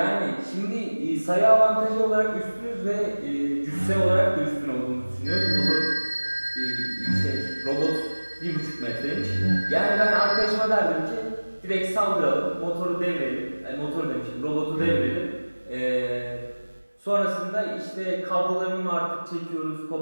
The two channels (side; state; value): both; inverted; correlation -1.00